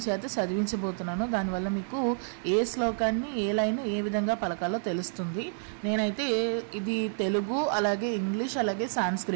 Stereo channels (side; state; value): left; silent; 58 dB below the other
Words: చేత చదివించబోతున్నాను. దానివల్ల మీకు ఏ శ్లోకాన్ని ఏ లైన్ ఏ విధంగా పలకాలో తెలుస్తుంది. నేనైతే ఇది తెలుగు, అలాగే ఇంగ్లీష్, అలాగే